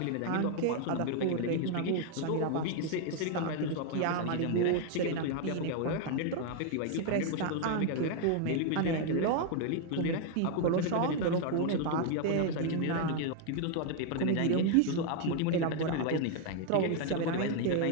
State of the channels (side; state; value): both; different; correlation 0.00